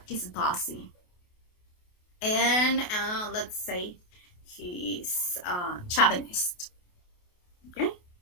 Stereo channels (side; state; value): right; late; 28 ms